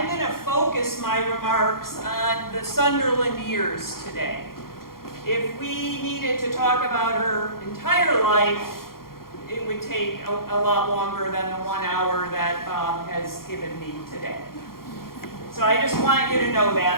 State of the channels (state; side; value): late; right; 0.92 ms